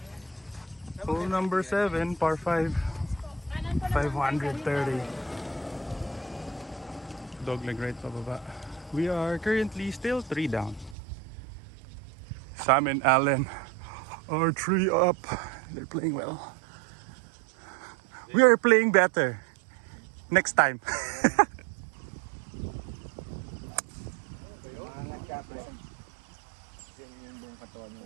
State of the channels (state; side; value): drops out; left; at 11.0 s